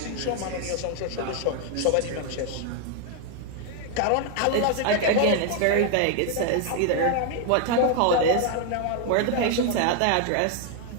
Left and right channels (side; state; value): both; different; correlation 0.00